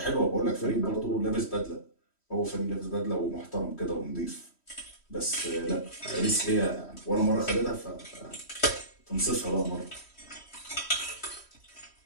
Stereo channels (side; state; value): right; late; 3.1 ms